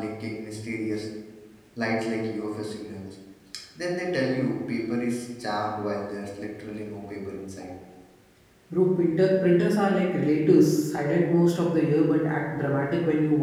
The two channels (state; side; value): identical; both; correlation 1.00